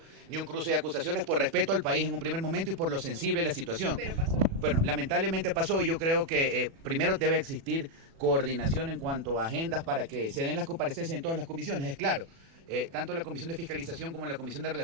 ni un cruce de acusaciones por respeto al país en un primer momento y por lo sensible de la situación. Pero pasó. Bueno, lamentablemente pasó y yo creo que primero debe existir coordinación en cuanto a agendas para que se den las comparecencias en todas las comisiones, es claro. Tanto la Comisión de Fiscalización como la Comisión de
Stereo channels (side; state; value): left; late; 36 ms